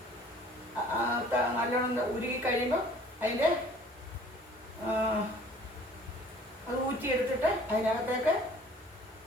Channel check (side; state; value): both; normal; correlation 0.52